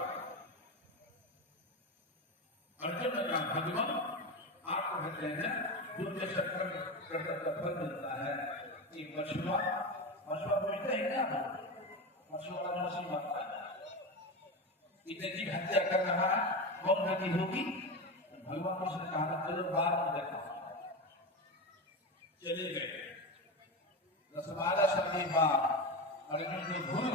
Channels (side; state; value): both; normal; correlation 0.20